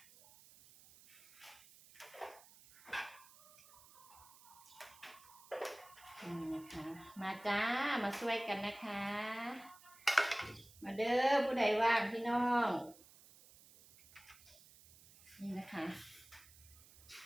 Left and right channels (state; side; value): noise; right; hiss, 23 dB below the sound